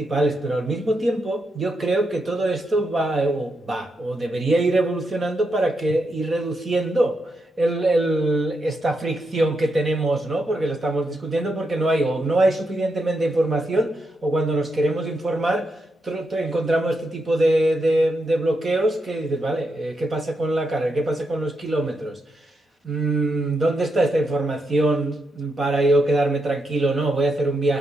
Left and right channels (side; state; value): both; normal; correlation 0.83